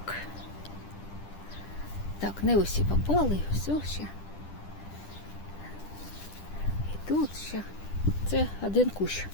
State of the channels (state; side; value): late; right; 10 ms